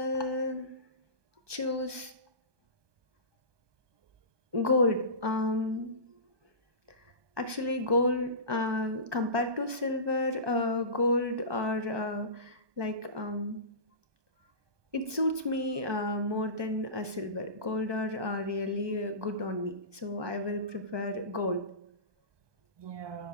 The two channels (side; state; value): left; late; 1.2 ms